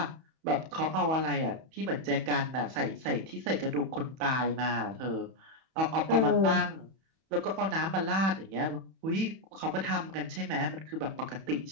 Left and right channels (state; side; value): late; left; 31 ms